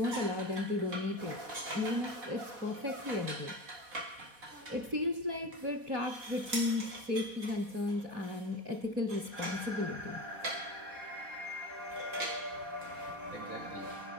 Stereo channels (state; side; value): late; left; 4.1 ms